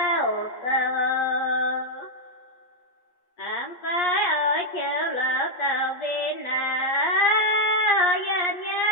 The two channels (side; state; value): right; late; 8.4 ms